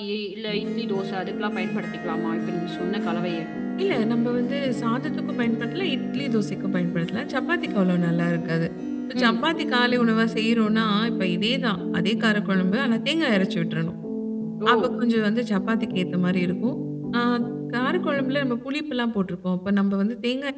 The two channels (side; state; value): both; identical; correlation 1.00